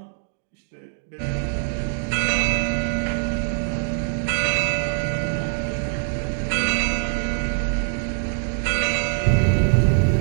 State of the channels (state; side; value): silent; left; digital silence